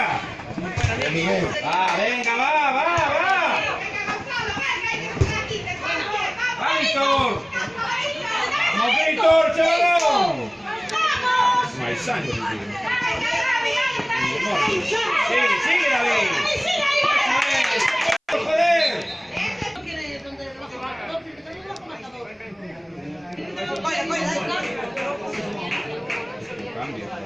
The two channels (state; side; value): identical; both; correlation 1.00